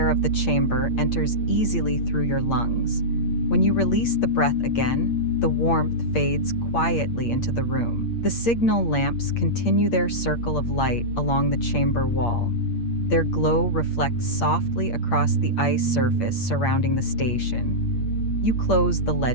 of the chamber enters easily through your lungs. When you release the breath again, the warmth fades quietly into the room. The signal lamps continue their circle of light along the chamber wall. Their glow reflects softly across the ice surface surrounding the station. You close the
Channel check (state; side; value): late; right; 8.6 ms